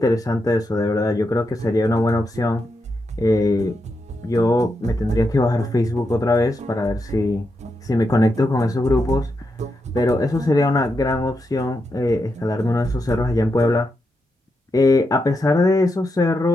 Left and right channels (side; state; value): both; normal; correlation 0.85